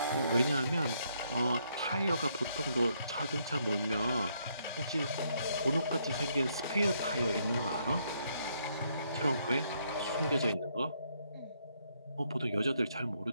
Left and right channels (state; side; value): inverted; both; correlation -0.73